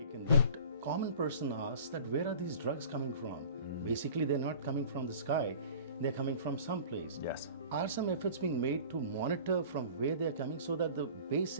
taken. But common person asks that where are these drugs coming from? Basically, they're not coming from the sky. They're coming from someplace. Yes. Are some efforts being made to monitor from where they're coming so that the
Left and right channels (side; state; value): both; inverted; correlation -0.44